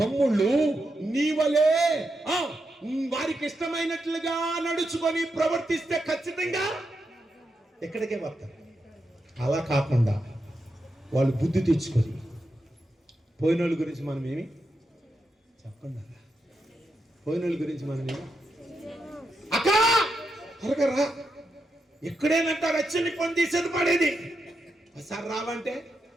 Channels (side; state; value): both; normal; correlation 0.85